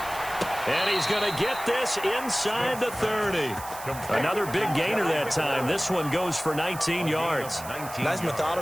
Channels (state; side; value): noise; right; hiss, 13 dB below the sound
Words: And he's going to get this inside the 30. Another big gainer that time. This one goes for 19 yards. Nice